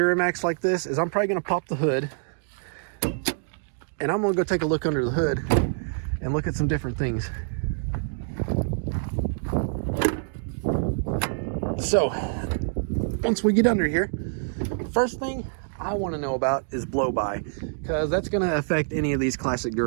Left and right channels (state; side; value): silent; left; digital silence